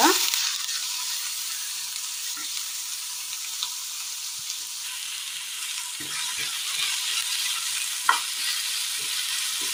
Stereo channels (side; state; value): both; identical; correlation 1.00